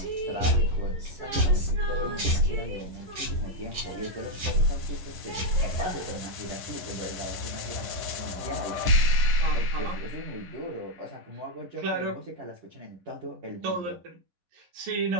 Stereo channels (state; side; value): late; left; 10 ms